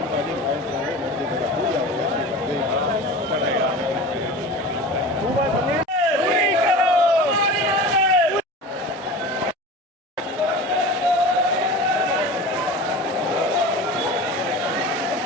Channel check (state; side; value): normal; both; correlation 0.34